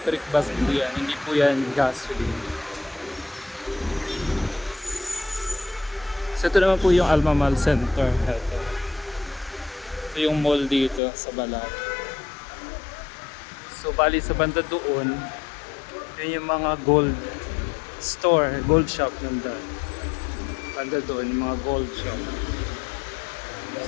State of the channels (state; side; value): drops out; right; at 11.0 s